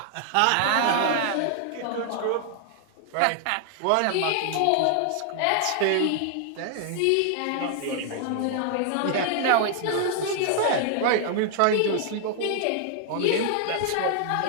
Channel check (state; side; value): different; both; correlation 0.00